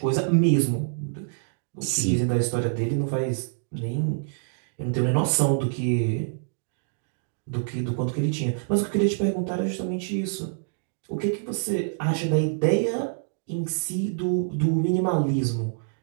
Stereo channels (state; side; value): silent; left; digital silence